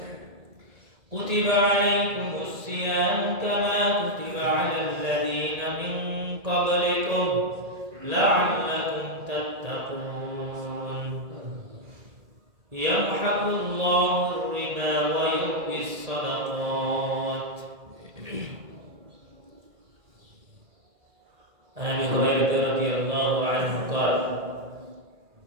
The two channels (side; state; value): left; late; 1.8 ms